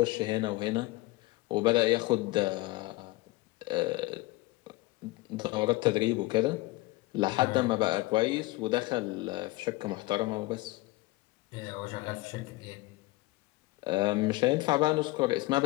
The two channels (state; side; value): quieter; right; 20.0 dB